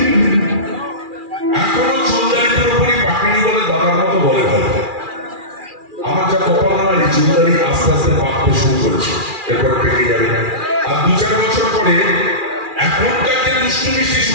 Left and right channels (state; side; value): late; left; 2.4 ms